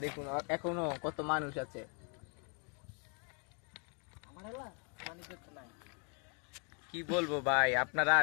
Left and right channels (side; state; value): right; quieter; 37.7 dB